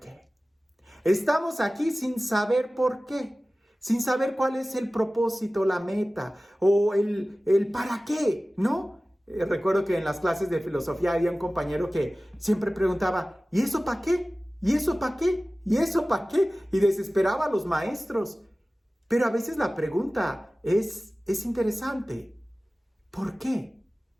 Estamos aquí sin saber por qué, sin saber cuál es el propósito, la meta o el para qué, ¿no? Recuerdo que en las clases de filosofía había un compañero que siempre preguntaba, ¿y eso para qué? ¿Y eso para qué? ¿Y eso para qué? Y desesperaba a los maestros. Pero a veces la pregunta es interesante. ¿Por qué?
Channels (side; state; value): both; normal; correlation 0.97